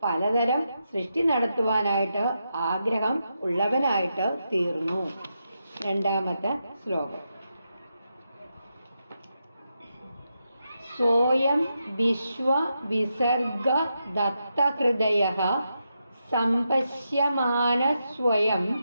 പലതരം സൃഷ്ടി നടത്തുവാനായിട്ട് ആഗ്രഹം ഉള്ളവനായിട്ട് തീർന്നു. 2ാമത്തെ ശ്ലോകം. സ്വയം വിശ്വ വിസർഗ ദത്തഹൃദയഃ സംപശ്യമാന സ്വയം.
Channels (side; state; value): both; inverted; correlation -0.85